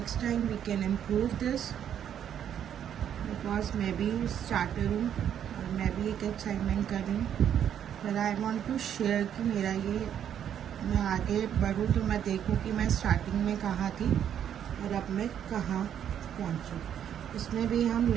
time we can improve this, because मैं भी स्टार्टर हूँ और मैं भी एक असाइनमेंट कर रही हूँ। पर आई वॉन्ट टू शेयर कि मेरा ये, मैं आगे बढ़ूँ तो मैं देखूँ कि मैं स्टार्टिंग में कहाँ थी और अब मैं कहाँ पहुँचूँ। इसमें भी हम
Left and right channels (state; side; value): quieter; left; 9.4 dB